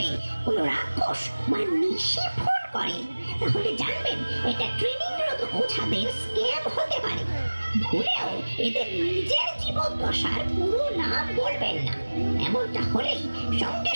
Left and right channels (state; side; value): inverted; both; correlation -1.00